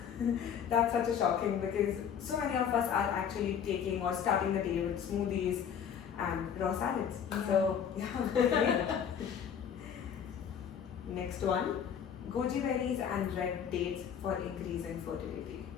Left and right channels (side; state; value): right; quieter; 8.0 dB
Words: That's such a shocking because so many of us are actually taking or starting the day with smoothies and raw salads. So yeah. Next one, goji berries and red dates for increasing fertility.